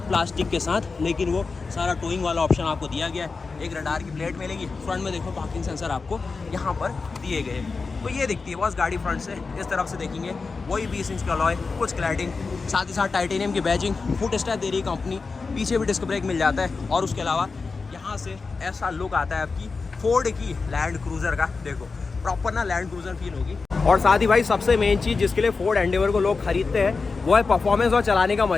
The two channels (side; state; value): right; quieter; 4.4 dB